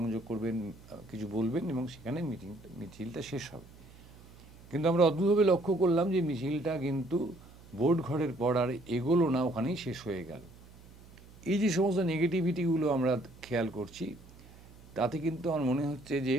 করবেন, কিছু বলবেন, এবং সেখানে মিছিলটা শেষ হবে। কিন্তু আমরা অদ্ভুতভাবে লক্ষ্য করলাম যে মিছিলটা কিন্তু ভোট ঘরের পর আর এগোলো না, ওখানেই শেষ হয়ে গেল। এই যে সমস্ত নেগেটিভিটিগুলো আমরা খেয়াল করছি, তাতে কিন্তু আমার মনে হচ্ছে যে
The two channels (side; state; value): right; noise; hum, 22 dB below the sound